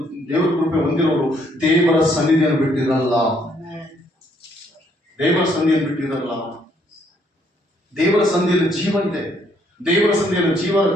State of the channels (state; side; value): normal; both; correlation 0.68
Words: ದೇವರ ಕೃಪೆ ಹೊಂದಿರೋರು ದೇವರ ಸನ್ನಿಧಿಯನ್ನು ಬಿಟ್ಟಿರಲ್ಲ. ದೇವರ ಸನ್ನಿಧಿಯನ್ನು ಬಿಟ್ಟಿರಲ್ಲ. ದೇವರ ಸಂಧಿಯಲ್ಲಿ ಜೀವ ಇದೆ, ದೇವರ ಸಂಧಿಯಲ್ಲಿ